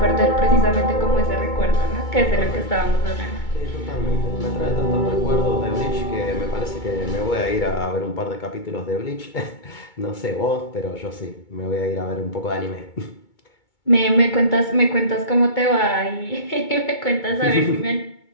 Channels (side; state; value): right; late; 2.2 ms